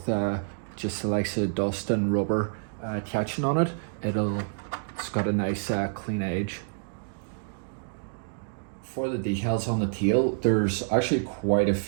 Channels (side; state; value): left; silent; digital silence